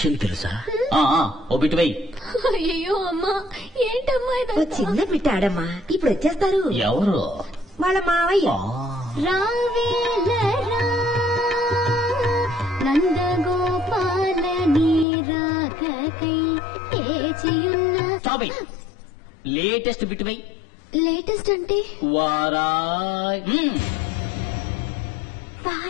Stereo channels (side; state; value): right; drops out; at 15.1 s